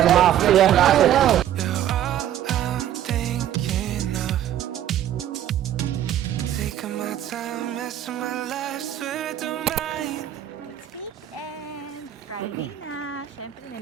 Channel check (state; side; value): quieter; left; 11.4 dB